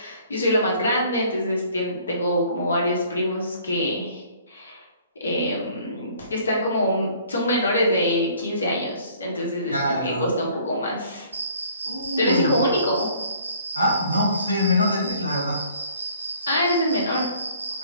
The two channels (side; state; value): both; inverted; correlation -0.56